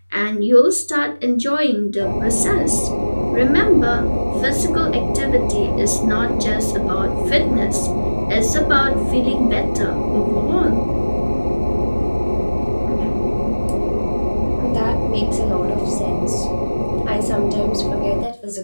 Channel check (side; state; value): both; inverted; correlation -1.00